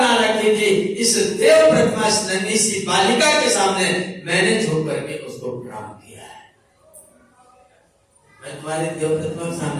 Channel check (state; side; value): identical; both; correlation 1.00